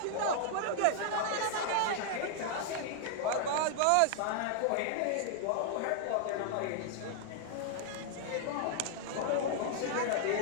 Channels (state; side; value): different; both; correlation -0.01